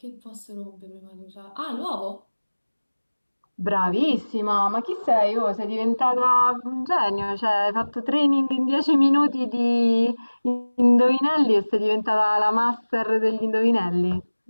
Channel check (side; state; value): both; inverted; correlation -1.00